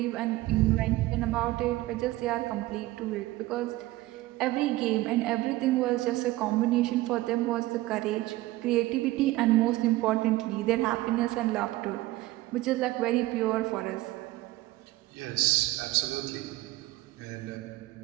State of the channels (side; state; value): left; quieter; 17.9 dB